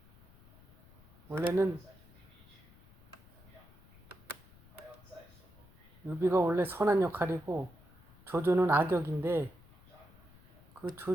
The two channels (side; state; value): left; noise; rumble, 25 dB below the sound